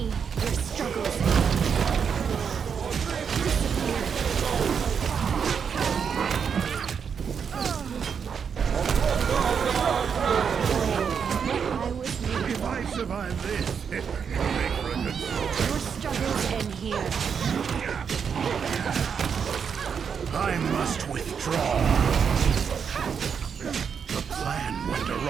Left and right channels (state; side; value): quieter; left; 6.8 dB